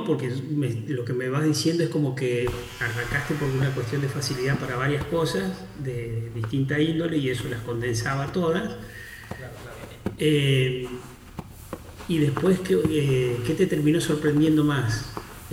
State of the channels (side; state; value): both; identical; correlation 1.00